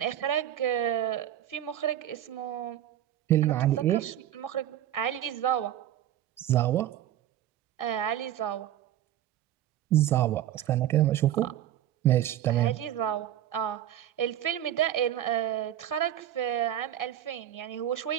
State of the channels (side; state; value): left; quieter; 11.8 dB